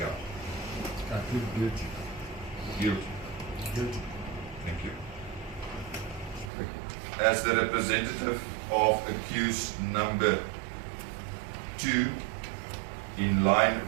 I plead guilty. Guilty. Guilty. Thank you. As the representative of accused number 2, in line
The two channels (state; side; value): drops out; left; at 6.5 s